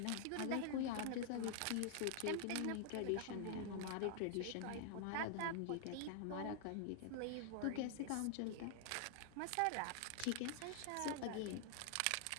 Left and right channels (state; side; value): different; both; correlation 0.00